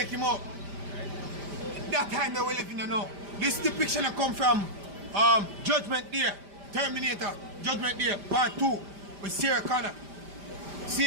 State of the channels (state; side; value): late; left; 5.1 ms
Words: him out. That time that we're living in now. This depiction that come from Judgment Day, Terminator, Judgment Day, Part 2, with Sarah Connor.